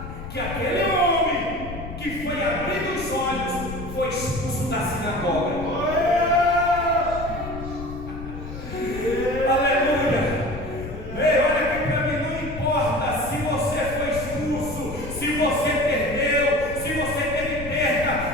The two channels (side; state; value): left; noise; rumble, 10 dB below the sound